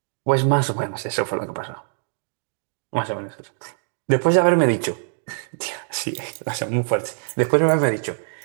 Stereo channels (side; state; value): left; silent; digital silence